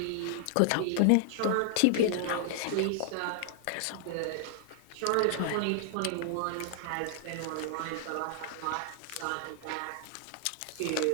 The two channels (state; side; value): different; both; correlation 0.00